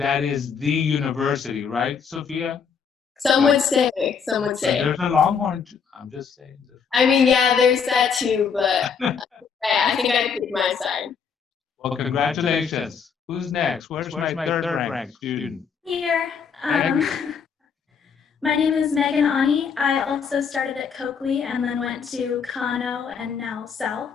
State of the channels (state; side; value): quieter; right; 6.4 dB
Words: is the university, right, Sophia? Some would say. There's a Longhorn. I'm just saying. I mean, yeah, there's that too, but I think I picked my side. Well, congratulations. Who's next? Where's my third ranked student? Here. My name is Megan Ani. I also started at Coakley and then went to Kano and now South.